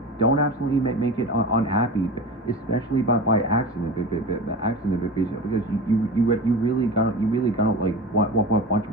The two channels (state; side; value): normal; both; correlation 0.30